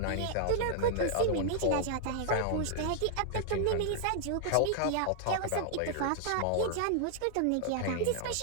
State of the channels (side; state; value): both; different; correlation 0.00